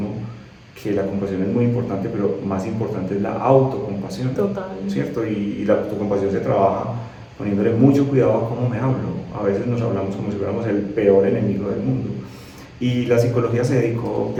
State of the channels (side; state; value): both; identical; correlation 1.00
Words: que la compasión es muy importante, pero más importante es la autocompasión. Total. ¿Cierto? Y la autocompasión se trabaja poniéndole mucho cuidado a cómo me hablo. A veces nos hablamos como si fuéramos el peor enemigo del mundo. Y la psicología se dedicó